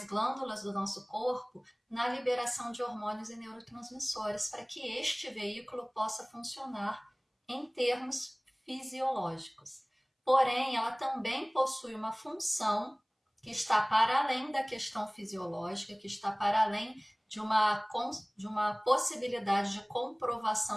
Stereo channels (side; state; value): both; identical; correlation 1.00